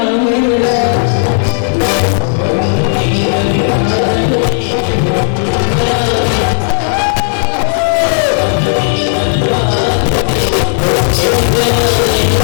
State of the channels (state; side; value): silent; right; digital silence